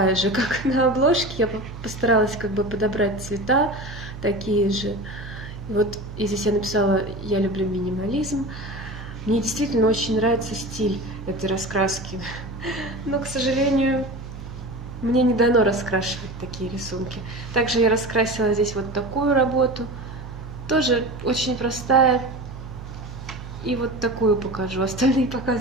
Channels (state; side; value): noise; right; hum, 11 dB below the sound